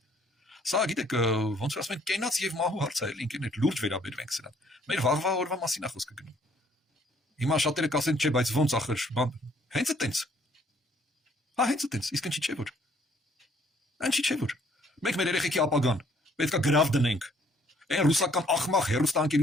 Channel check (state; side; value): normal; both; correlation 0.63